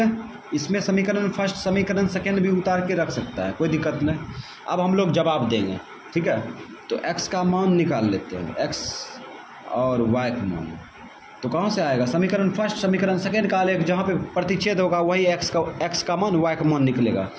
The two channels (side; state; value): both; identical; correlation 1.00